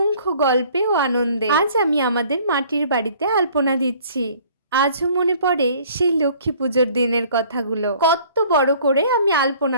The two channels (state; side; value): inverted; both; correlation -0.54